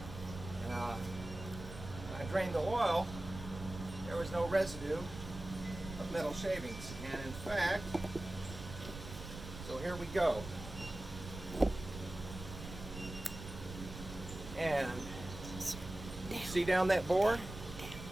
And when I drained the oil, there was no residue of metal shavings. And in fact, so here we go. And see down that bore?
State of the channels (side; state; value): right; noise; rumble, 11 dB below the sound